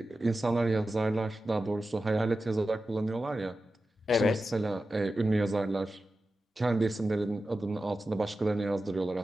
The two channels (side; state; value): both; normal; correlation 0.93